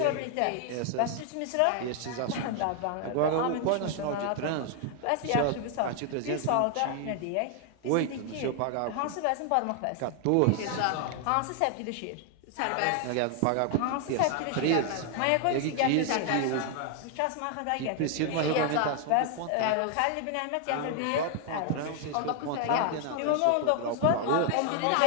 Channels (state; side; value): different; both; correlation 0.00